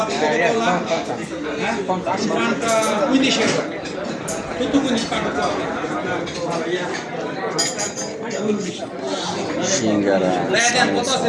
Coca-Cola, 50, 15 euro. Tutto 15 pago qua. সিঙ্গারা,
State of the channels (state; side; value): identical; both; correlation 1.00